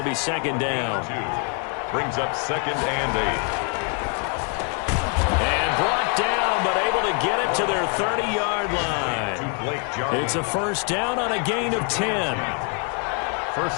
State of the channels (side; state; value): right; quieter; 37.6 dB